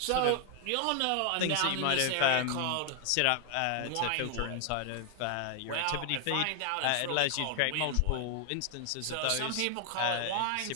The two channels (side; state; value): both; different; correlation 0.00